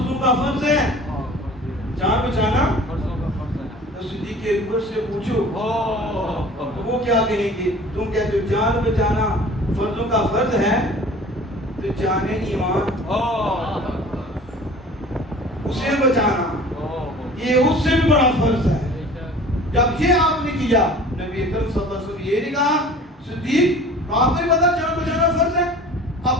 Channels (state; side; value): normal; both; correlation 0.45